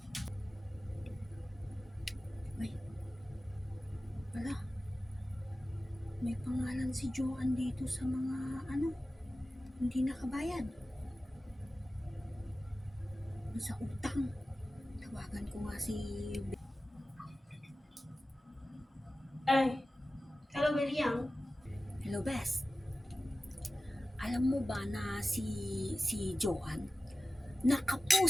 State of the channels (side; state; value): both; normal; correlation 0.95